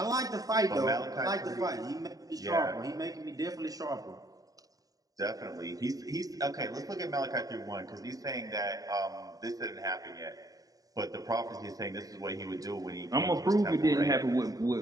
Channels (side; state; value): left; late; 0.18 ms